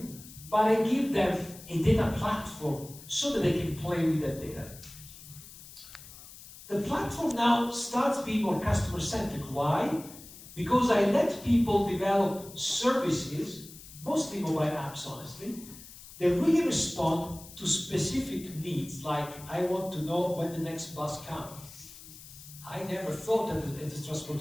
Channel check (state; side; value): noise; left; hiss, 17 dB below the sound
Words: but I give them a data platform so that they can play with that data. The platform now starts being more customer-centric. Why? Because I let people develop services, mostly mobile apps, honestly, that really respond to specific needs, like I want to know when the next bus comes. I never thought that as a